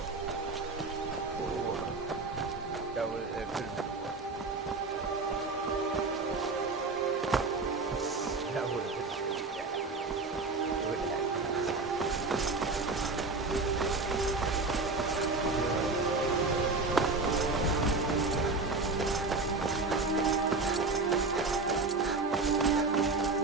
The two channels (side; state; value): left; quieter; 3.7 dB